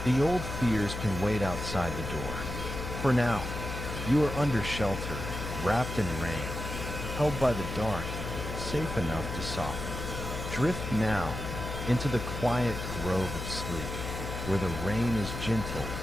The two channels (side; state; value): left; noise; hum, 6 dB below the sound